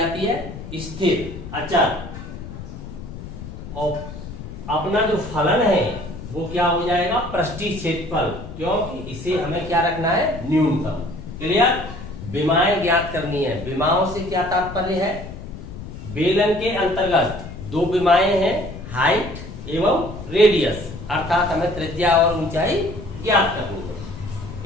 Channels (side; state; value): left; noise; rumble, 11 dB below the sound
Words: है? स्थिर, अचल। और अपना जो फलन है वो क्या हो जाएगा? पृष्ठीय क्षेत्रफल, क्योंकि इसे हमें क्या रखना है? न्यूनतम। क्लियर? विमाएं ज्ञात करनी है। विमाओं से क्या तात्पर्य है? बेलन के अंतर्गत दो विमाएं हैं, हाइट एवं रेडियस, अर्थात हमें त्रिज्या और ऊंचाई ज्ञात करनी है।